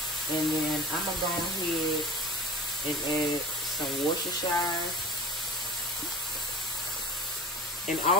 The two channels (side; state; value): both; normal; correlation 0.38